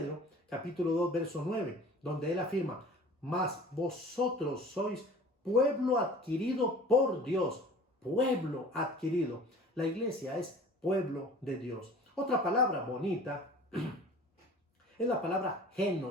capítulo 2, verso 9. donde él afirma, mas vosotros sois pueblo adquirido por Dios, pueblo adquirido. La iglesia es pueblo de Dios. Otra palabra bonita es la palabra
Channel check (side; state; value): both; normal; correlation 0.44